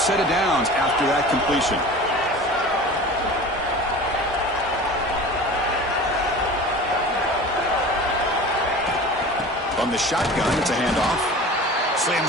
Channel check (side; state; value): both; normal; correlation 0.38